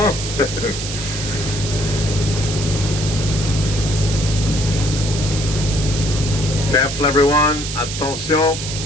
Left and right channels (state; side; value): noise; right; hiss, 6 dB below the sound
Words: Careful everyone, attention,